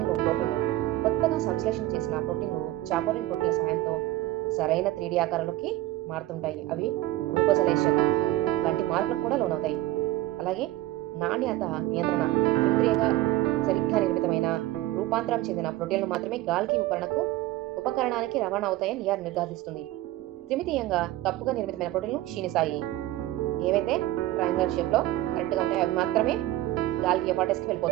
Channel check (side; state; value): left; quieter; 16.3 dB